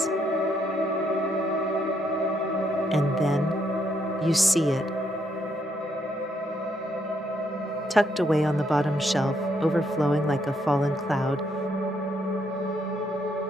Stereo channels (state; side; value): normal; both; correlation 0.74